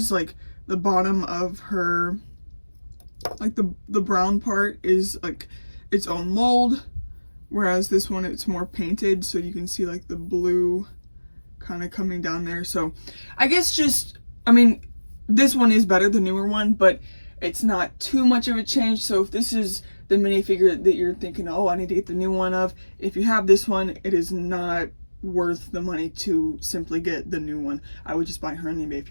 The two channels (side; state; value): both; inverted; correlation -1.00